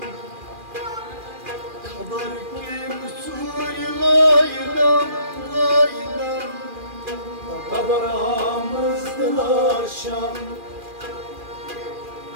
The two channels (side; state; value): left; late; 2.4 ms